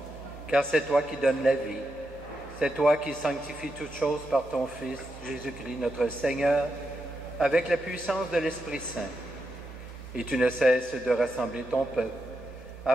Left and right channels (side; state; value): both; normal; correlation 0.85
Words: Car c'est toi qui donnes la vie, c'est toi qui sanctifies toutes choses par ton Fils, Jésus-Christ, notre Seigneur, avec la puissance de l'Esprit Saint. Et tu ne cesses de rassembler ton peuple,